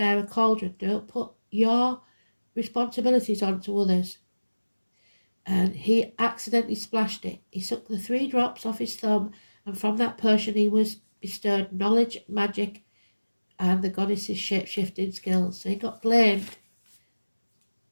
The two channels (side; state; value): both; inverted; correlation -1.00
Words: a cauldron. Don't put your responsibilities onto others. And he accidentally splashed it. He sucked the 3 drops off his thumb, and from that potion he was bestowed knowledge, magic, and the goddess's shape-shifting skills. So he got blamed.